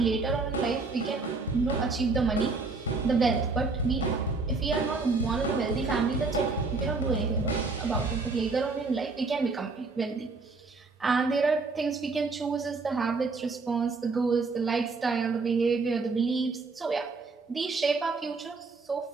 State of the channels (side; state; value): left; quieter; 4.0 dB